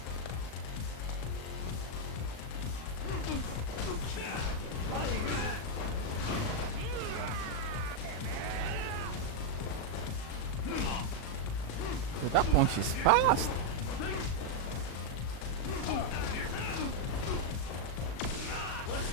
Dude, that punch is fast.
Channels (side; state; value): right; late; 38 ms